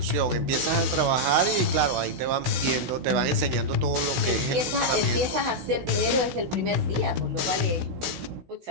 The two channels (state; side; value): late; left; 16 ms